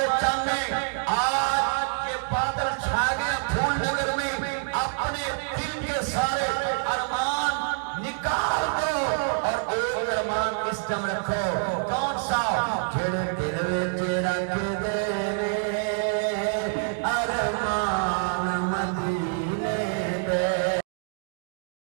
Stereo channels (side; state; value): left; silent; 61 dB below the other